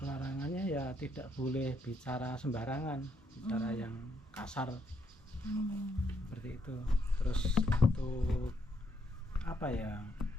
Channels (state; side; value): normal; both; correlation 0.74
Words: Larangannya ya tidak boleh bicara sembarangan, bicara yang kasar, seperti itu. Terus